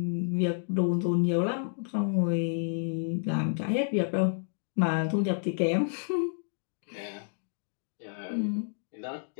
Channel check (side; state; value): right; silent; digital silence